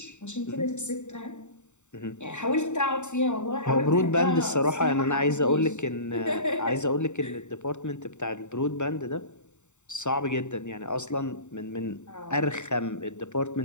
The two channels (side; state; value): right; late; 0.84 ms